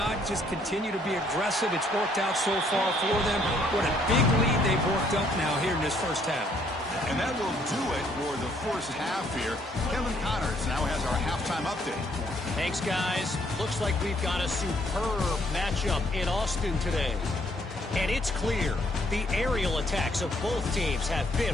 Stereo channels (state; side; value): normal; both; correlation 0.67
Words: just continue to be aggressive? It's worked out so far for them. What a big lead they've worked up now here in this first half. And that will do it for the first half here. Kevin Connors now has our halftime update. Thanks, guys. Looks like we've got a superb matchup in Austin today. And it's clear, the aerial attacks of both teams have